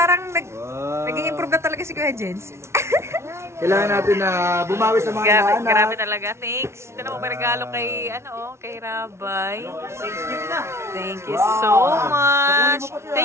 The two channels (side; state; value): left; late; 0.13 ms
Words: nag-i-improve na talaga si Kuya Jens. Kailangan natin na bumawi sa mga inaanak. Grabe talaga. Thanks. Ito na po may regalo kay, kay Rabay. Thank you so much.